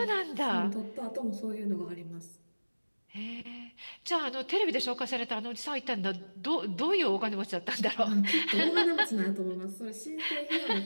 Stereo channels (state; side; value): inverted; both; correlation -1.00